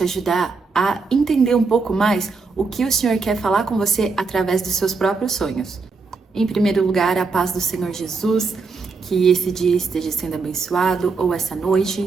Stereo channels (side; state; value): left; quieter; 4.4 dB